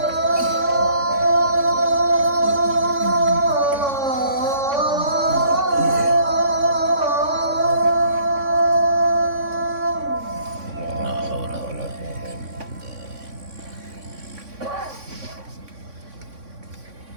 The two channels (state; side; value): late; left; 3.6 ms